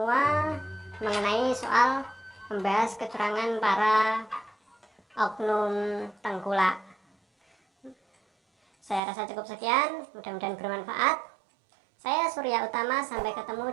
mengenai soal membahas kecurangan para oknum tengkulak. Saya rasa cukup sekian, mudah-mudahan bermanfaat. Saya Surya Utama, sampai ketemu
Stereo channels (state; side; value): drops out; left; at 9.0 s